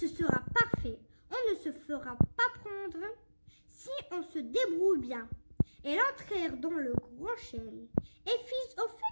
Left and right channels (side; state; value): both; inverted; correlation -1.00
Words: sera parfait, on ne se fera pas prendre si on se débrouille bien. Elles entrèrent dans le grand chêne. Et fils au